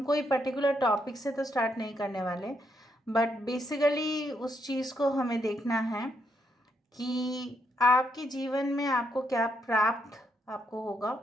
कोई पर्टिकुलर टॉपिक से तो स्टार्ट नहीं करने वाले, बट बेसिकली उस चीज़ को हमें देखना है कि आपके जीवन में आपको क्या प्राप्त आपको होगा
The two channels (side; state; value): both; normal; correlation 0.77